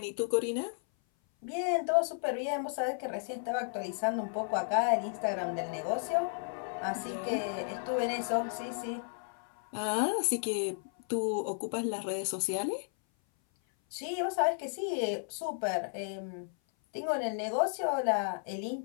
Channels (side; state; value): right; silent; 55 dB below the other